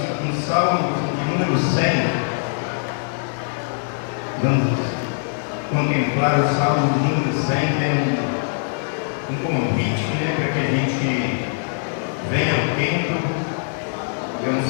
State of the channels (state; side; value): silent; right; 59 dB below the other